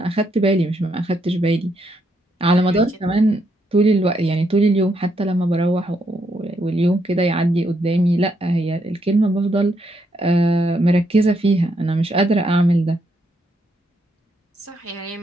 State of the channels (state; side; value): normal; both; correlation 0.77